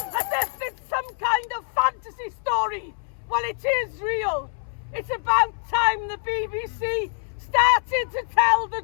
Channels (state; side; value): silent; right; 62 dB below the other